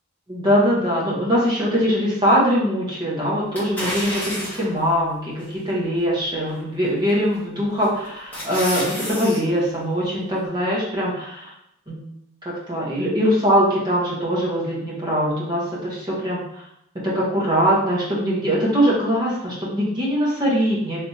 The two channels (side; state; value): both; normal; correlation 0.39